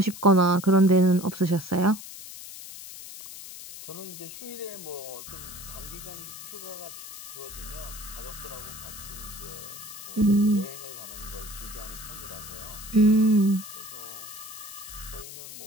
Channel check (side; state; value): left; noise; hiss, 12 dB below the sound